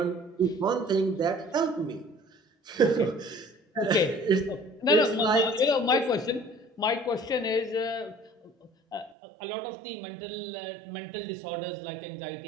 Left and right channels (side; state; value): left; drops out; at 9.2 s